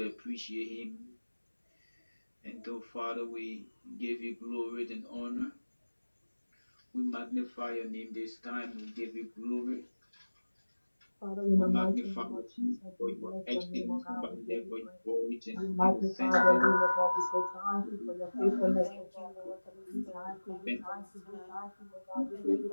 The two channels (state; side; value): inverted; both; correlation -1.00